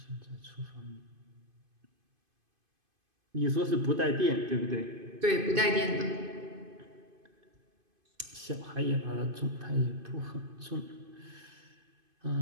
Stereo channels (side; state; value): left; late; 2.5 ms